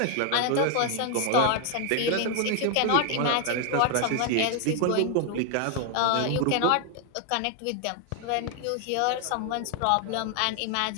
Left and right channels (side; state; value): both; different; correlation 0.00